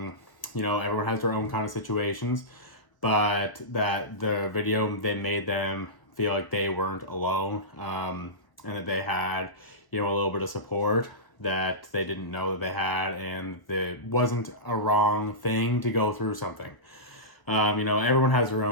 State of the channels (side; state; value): right; late; 1.3 ms